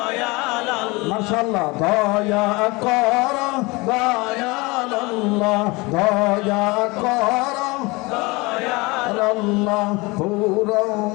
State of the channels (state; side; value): quieter; right; 24.6 dB